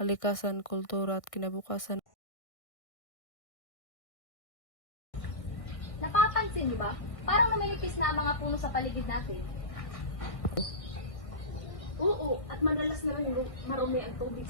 kultura at kinabukasan. Napapansin niyo ba? Parang numinipis na ang mga puno sa paligid natin. Oo, at madalas na rin marumi ang tubig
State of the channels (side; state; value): right; late; 1.6 ms